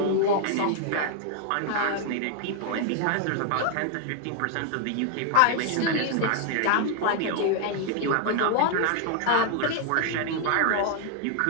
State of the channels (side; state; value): both; different; correlation 0.00